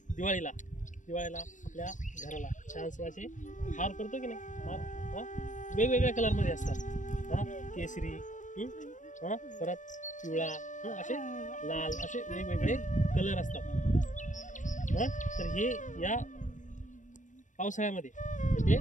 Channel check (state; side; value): late; right; 0.37 ms